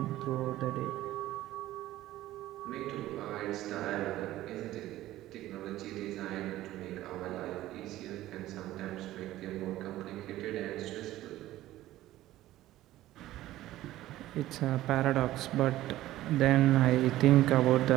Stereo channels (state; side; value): quieter; left; 15.1 dB